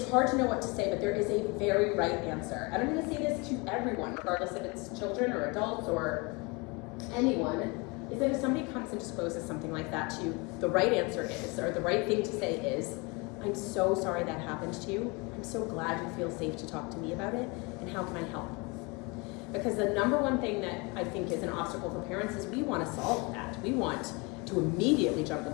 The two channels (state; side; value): quieter; right; 28.3 dB